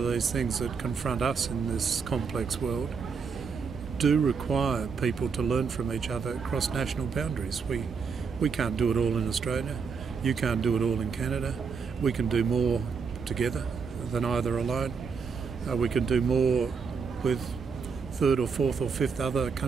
these things that confront us in this complex world do require people to learn from each other across national boundaries. We can't do it all in Australia. You can't do it all in Canada. We can do more together than either alone. We can do more with third or fourth or fifth other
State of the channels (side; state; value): left; quieter; 5.7 dB